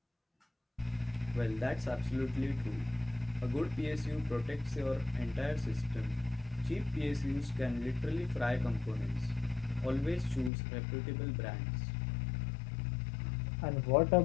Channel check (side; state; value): right; drops out; at 10.5 s